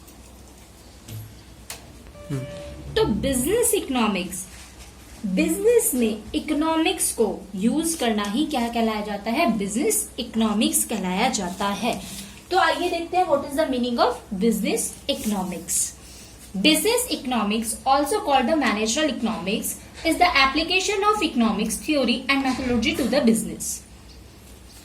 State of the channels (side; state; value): both; identical; correlation 1.00